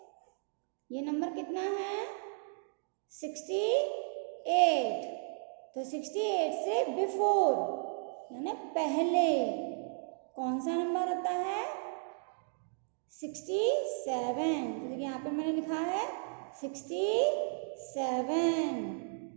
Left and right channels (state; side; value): silent; left; digital silence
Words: ये नंबर कितना है 68. तो 68 से बिफोर यानी पहले कौन सा नंबर होता है 67. तो देखिए यहाँ पे मैंने लिखा है 67.